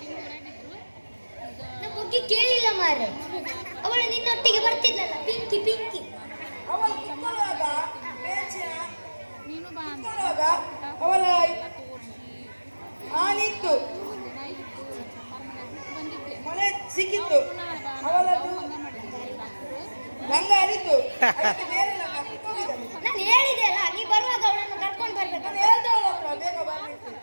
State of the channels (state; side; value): inverted; both; correlation -1.00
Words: ನಾ ಬುಗ್ಗಿ ಕೇಳಿಲ್ಲ ಮಾರೆ. ಅವಳು ನಿನ್ನೊಟ್ಟಿಗೆ ಬರ್ತಿದ್ಲಲ್ಲ, ಪಿಂಕಿ ಪಿಂಕಿ. ಅವಳು ಕಿತ್ತುವಾಗ ಅವಳ ಆನಿತ್ತು, ಮಳೆ ಸಿಕ್ಕಿತ್ತು, ಅವಳದು ಗಂಗ ಹರಿತು. ನಾನು ಹೇಳಿದೆ ಅಲ್ಲ, ನೀ ಬರುವಾಗ ಅವಳನ್ನು ಕರ್ಕೊಂಡು ಬರ್ಬೇಕು. ನಾನು ಹೇಳ್ದೆ ಅವಳ ಹತ್ರ ಬೇಗ ಬರ್ಲಿಕ್ಕೆ.